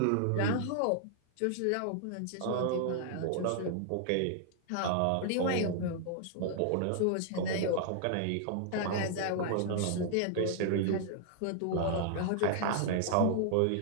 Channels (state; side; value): different; both; correlation -0.01